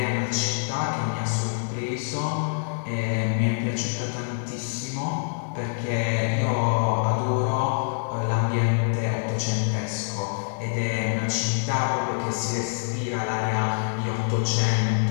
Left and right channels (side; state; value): right; silent; 57 dB below the other